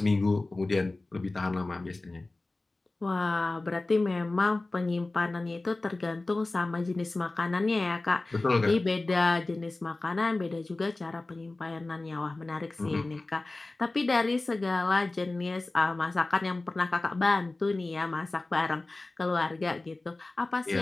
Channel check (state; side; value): quieter; right; 3.1 dB